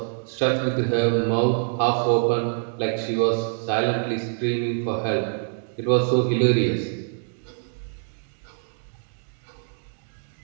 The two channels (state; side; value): silent; left; 60 dB below the other